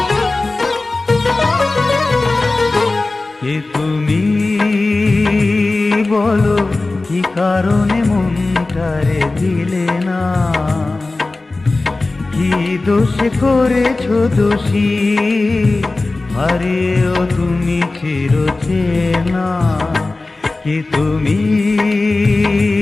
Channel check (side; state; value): right; quieter; 3.2 dB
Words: কে তুমি বলো, কি কারণে মনটারে দিলে না? কি দোষে করেছো দোষী, হারিয়েও তুমি চিরচেনা? কে তুমি